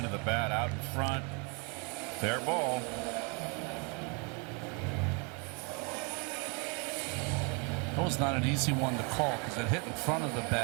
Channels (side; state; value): left; quieter; 31.9 dB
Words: of the bat, out in front. Fair ball. That was not an easy one to call because it hit in front of the